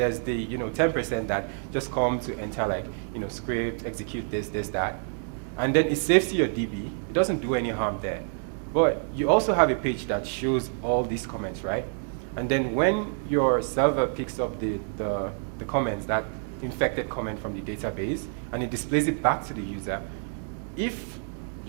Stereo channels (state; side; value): silent; left; 55 dB below the other